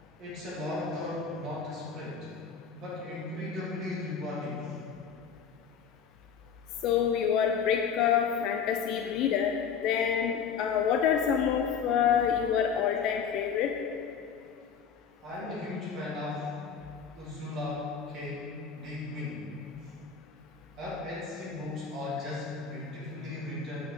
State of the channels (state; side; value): quieter; right; 6.7 dB